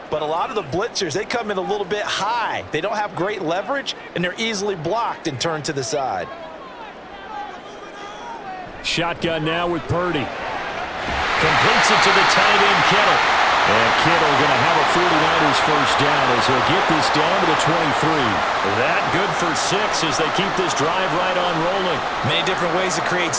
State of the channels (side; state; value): both; identical; correlation 1.00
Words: But a lot of the blitzers, they come in a little bit high. They don't have great leverage, and they're easily blocked and turned to the side. Shotgun now with Purdy. Completes it to the tight end, Kittle. And Kittle going to have a 49ers first down as he'll get this down to the 23. That good for 6 as they keep this drive right on rolling. Many different ways to create